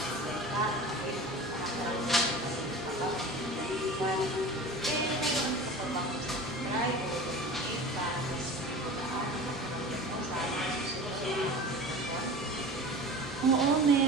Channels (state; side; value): normal; both; correlation 0.36